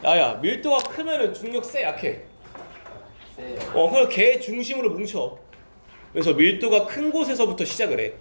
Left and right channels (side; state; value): both; inverted; correlation -1.00